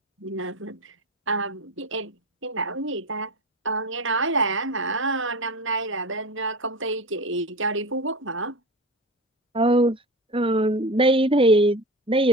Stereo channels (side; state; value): both; normal; correlation 0.28